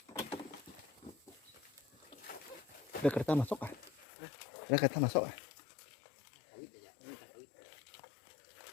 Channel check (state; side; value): drops out; right; at 4.0 s